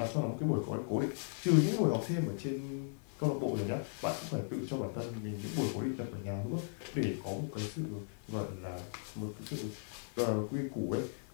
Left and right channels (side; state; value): right; silent; 53 dB below the other